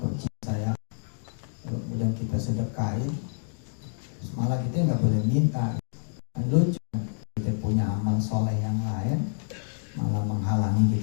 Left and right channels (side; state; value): right; silent; digital silence